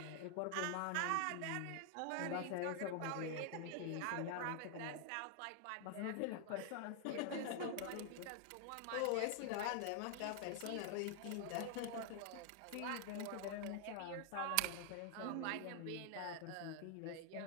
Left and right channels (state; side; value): different; both; correlation 0.00